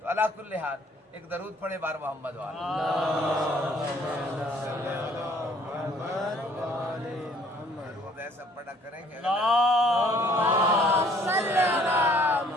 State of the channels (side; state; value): both; normal; correlation 0.59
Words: تو علی کل حال ایک درود پڑھے بار محمد والا، درود ایسا پڑھا کریں کہ